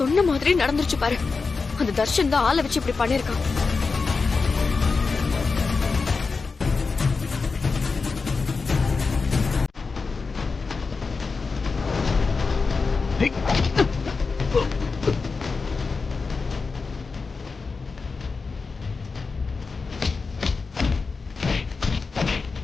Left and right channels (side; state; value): right; quieter; 4.5 dB